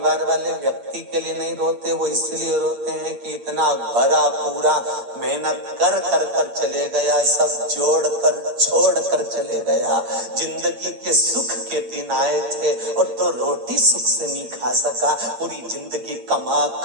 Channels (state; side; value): late; left; 8.7 ms